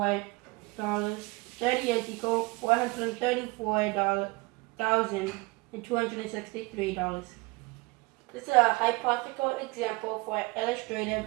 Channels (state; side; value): quieter; left; 24.7 dB